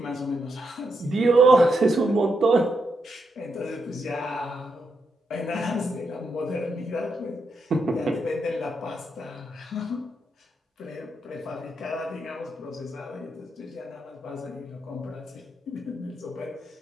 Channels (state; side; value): normal; both; correlation 0.82